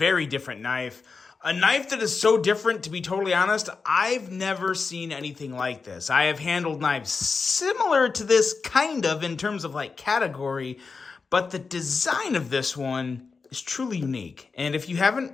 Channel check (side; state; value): right; quieter; 4.7 dB